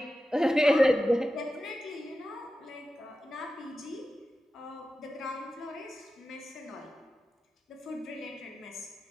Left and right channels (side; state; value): both; normal; correlation 0.93